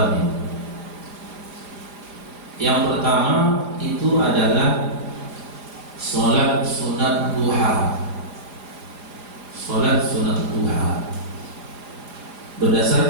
Yang pertama itu adalah sholat sunat duha. Sholat sunat duha.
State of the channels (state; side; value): late; left; 4.9 ms